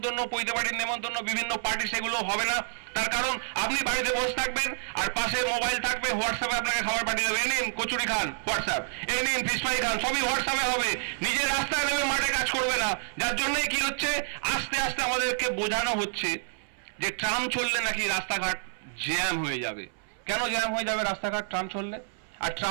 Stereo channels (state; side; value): silent; left; 59 dB below the other